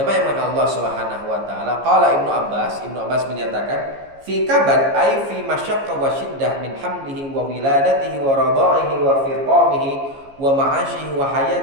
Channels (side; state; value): left; late; 15 ms